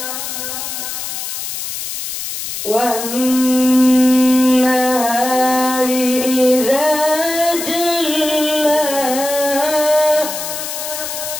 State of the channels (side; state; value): left; noise; hiss, 6 dB below the sound